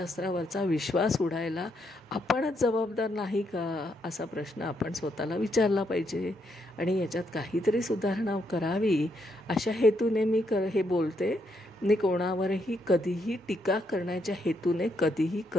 विश्वास उडायला आपणच जबाबदार नाही का, असा प्रश्न आपण स्वतःला विचारला पाहिजे. आणि याच्यात काहीतरी सुधारणा करावी अशा हेतूने मी हे बोलते. मी कोणावरही कधीही टीका करण्याच्या हेतूने कधीही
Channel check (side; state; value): both; normal; correlation 0.77